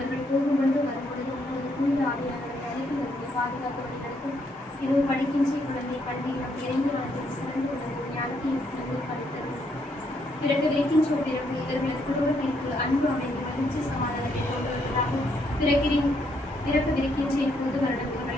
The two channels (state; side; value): normal; both; correlation 0.73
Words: போகும்பொழுது வரும்பொழுது உங்களது தூய ஆவியாளர்கள் அனைத்து இவர்களை பாதுகாத்து வழிநடத்தும். இரவு படிக்கின்ற குழந்தை கல்வியிலும் இறைந்து வாழ்வில் சிறந்து கொண்டது ஞானத்தையும் சிறந்து படித்தரும். பிறகு வைக்கின்ற பிறகு இவர்களது குடும்பத்திற்கு அன்பு அமைதி மகிழ்ச்சி சமாதானத்தை கொண்டு வருவதாகவும் பிறப்பு விரிக்கின்ற இப்போது வருடம்